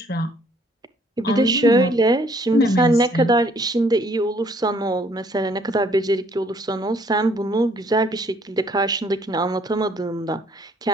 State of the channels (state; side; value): normal; both; correlation 0.62